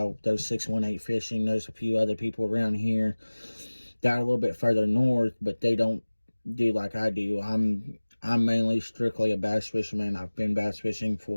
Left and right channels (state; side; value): inverted; both; correlation -1.00